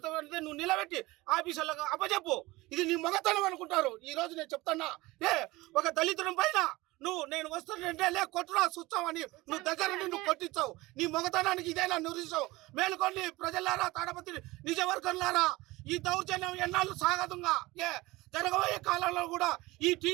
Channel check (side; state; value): left; quieter; 20.5 dB